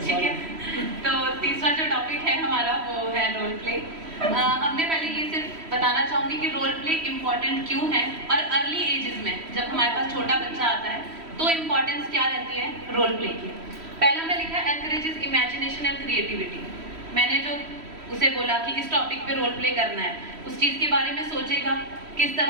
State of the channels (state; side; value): late; left; 3.1 ms